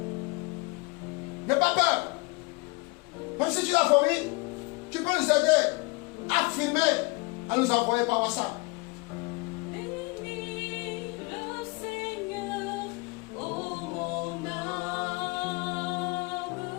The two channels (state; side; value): quieter; right; 26.6 dB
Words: N'aie pas peur. Même si tu l'as vomi, tu peux nous aider à filmer, à nous envoyer par WhatsApp. Bénis le Seigneur, ô mon âme.